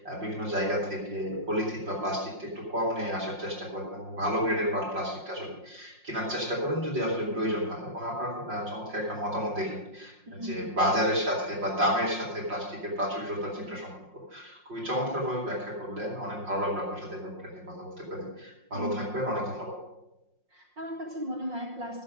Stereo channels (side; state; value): left; late; 5.6 ms